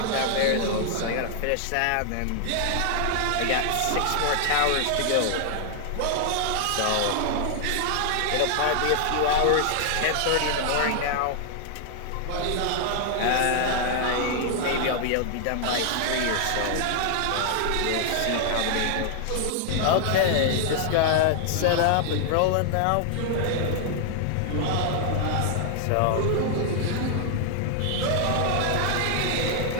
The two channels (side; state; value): both; different; correlation 0.00